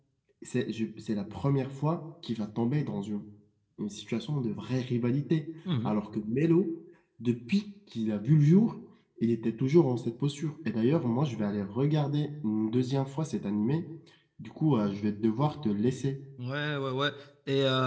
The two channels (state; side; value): identical; both; correlation 1.00